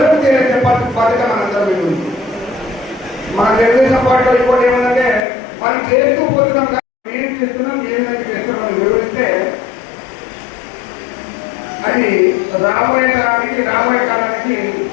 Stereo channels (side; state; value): right; drops out; at 5.2 s